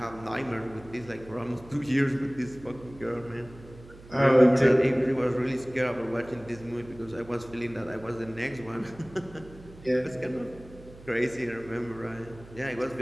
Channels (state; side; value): noise; right; hum, 19 dB below the sound